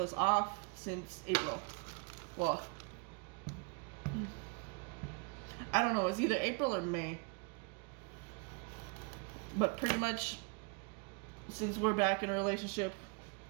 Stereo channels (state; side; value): quieter; left; 32.9 dB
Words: off since April. Well, I don't know. It was either April or May. But pretty much, since we're back in a relationship,